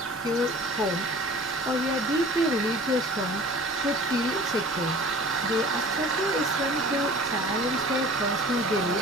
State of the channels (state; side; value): normal; both; correlation 0.44